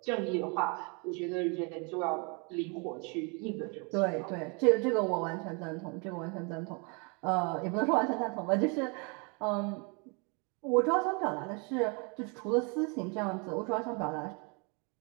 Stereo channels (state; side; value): quieter; left; 33.3 dB